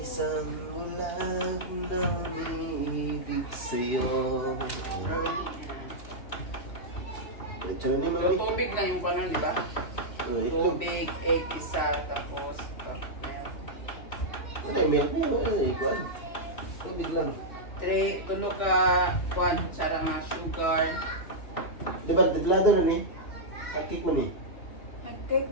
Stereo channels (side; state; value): right; late; 2.8 ms